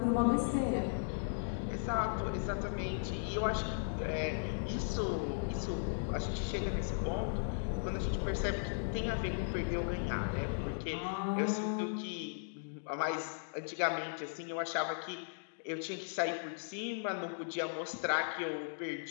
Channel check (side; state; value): right; silent; digital silence